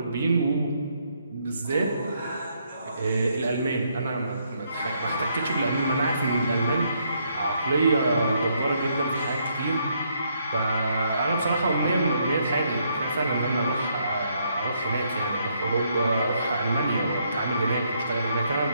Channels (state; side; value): inverted; both; correlation -0.73